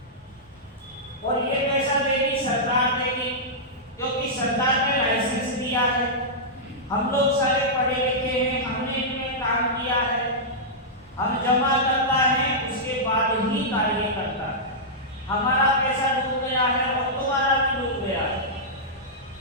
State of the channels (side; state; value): both; normal; correlation -0.11